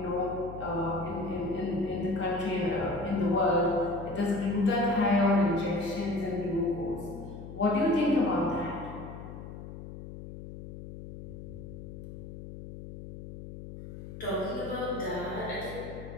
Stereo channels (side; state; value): left; noise; hum, 11 dB below the sound